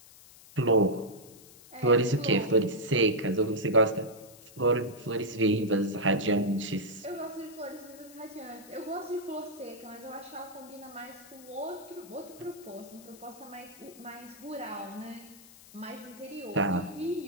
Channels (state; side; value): noise; left; hiss, 21 dB below the sound